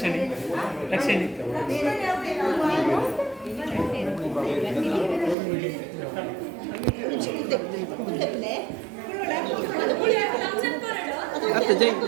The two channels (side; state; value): left; drops out; at 5.4 s